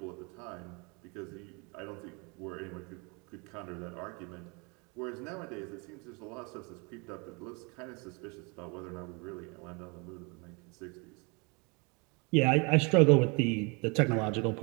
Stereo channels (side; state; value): left; quieter; 30.5 dB